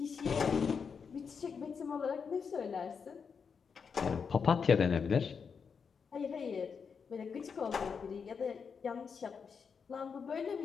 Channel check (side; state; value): right; quieter; 6.1 dB